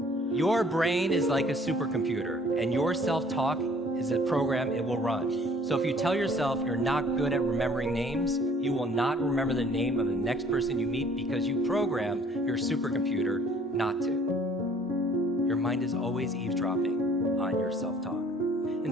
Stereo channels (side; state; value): both; normal; correlation 0.56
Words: Your brain is like a supercomputer, and your self-talk is a program it will run. So if you tell yourself you're not good at remembering names, you will not remember the name of the next person you meet because you programmed your supercomputer not to. Your mind is always eavesdropping on your self-talk. And